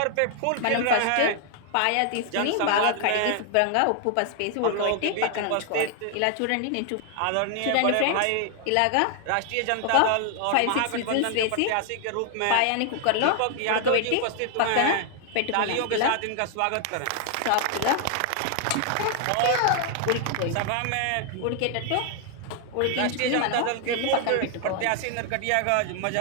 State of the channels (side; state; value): both; different; correlation 0.00